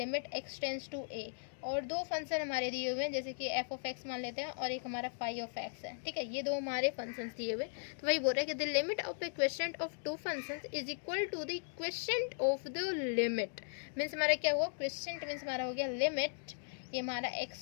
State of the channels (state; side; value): silent; right; digital silence